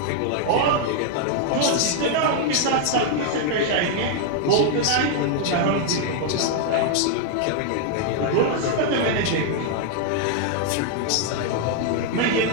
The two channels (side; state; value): both; different; correlation 0.00